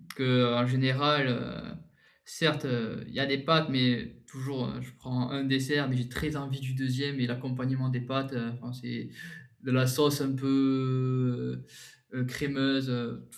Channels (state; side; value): identical; both; correlation 1.00